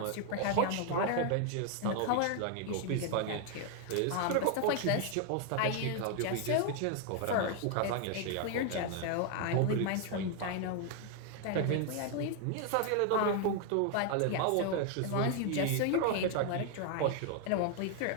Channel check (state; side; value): different; both; correlation 0.00